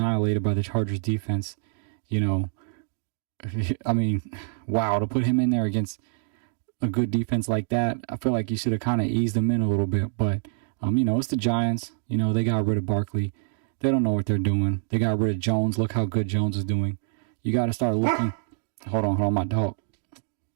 by the Chargers defense, you know, I mean, wow, to put him in there against a good defense like that, I feel like you should have kind of eased him in a little bit. But, you know, it's the Giants. You know, they got rid of Barkley. They don't know what they're doing. They got rid of Jones. Look how good Jones is doing. You got to start looking. Hold on, my dog.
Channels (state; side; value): silent; left; digital silence